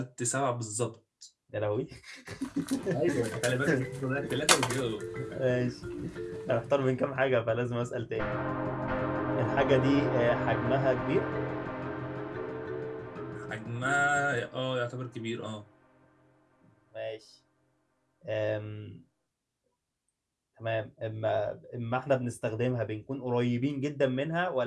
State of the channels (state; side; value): identical; both; correlation 1.00